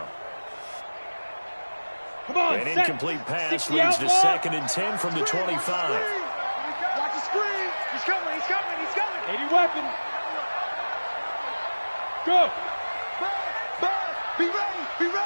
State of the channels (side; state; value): both; inverted; correlation -1.00